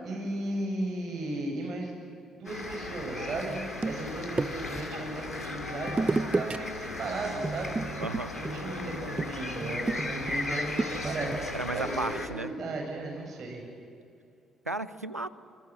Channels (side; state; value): both; normal; correlation 0.75